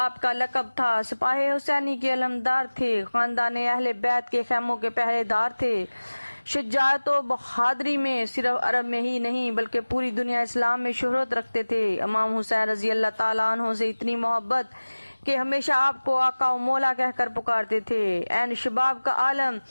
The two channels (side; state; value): both; inverted; correlation -1.00